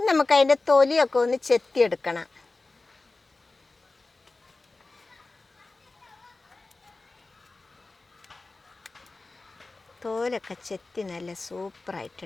നമുക്ക് അതിൻ്റെ തൊലിയൊക്കെ ഒന്ന് ചെത്തിയെടുക്കണം. തോലൊക്കെ ചെത്തി നല്ല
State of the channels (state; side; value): quieter; right; 3.4 dB